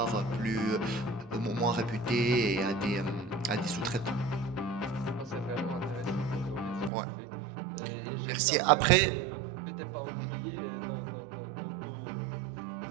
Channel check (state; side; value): drops out; left; at 6.9 s